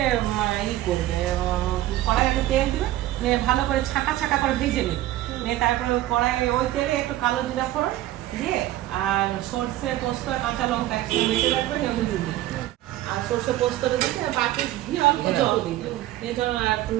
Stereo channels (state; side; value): quieter; left; 14.9 dB